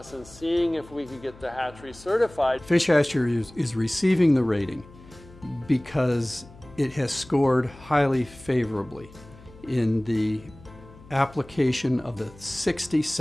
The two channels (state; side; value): noise; left; hum, 22 dB below the sound